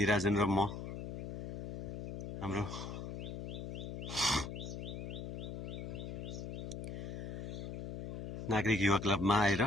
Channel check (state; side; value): noise; left; hum, 7 dB below the sound